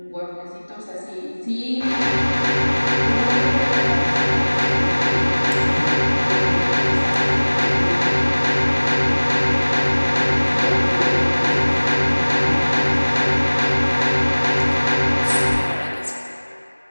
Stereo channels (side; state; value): both; inverted; correlation -1.00